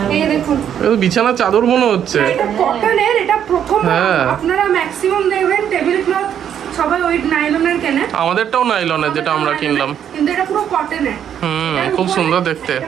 এই দেখুন, এটা তো বিছানার চাদর মনে হচ্ছে। এটা কটনের, এটা প্রথম হ্যাঁ। আপনারা ম্যাক্সিমাম দেখবেন টেবিল ক্লথ সবাই ওই নাইলনের কেনে, আমাদেরটাও নাইলনের যেটা আমরা কিনলাম। কিন্তু এটা পুরো কটনের। খুব সুন্দর দেখতে।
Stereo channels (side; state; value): left; quieter; 9.3 dB